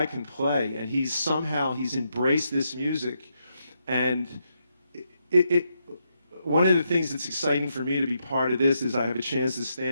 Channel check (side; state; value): both; inverted; correlation -0.80